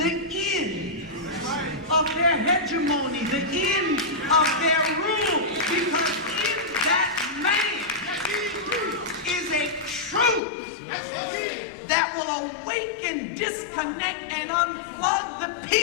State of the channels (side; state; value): right; drops out; at 10.4 s